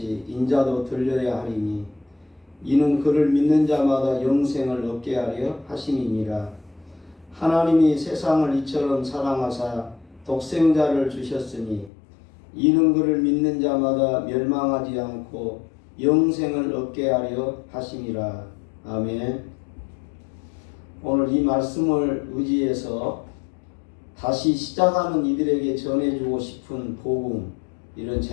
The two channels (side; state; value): right; drops out; at 11.9 s